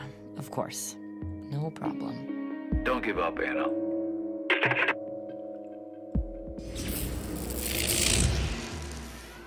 of course. No problem. Don't give up, Anna.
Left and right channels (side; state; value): both; identical; correlation 1.00